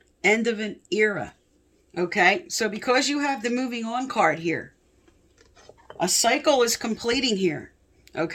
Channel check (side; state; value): both; identical; correlation 1.00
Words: end of an era. Okay, so because you have the moving on card here, a cycle is completing here.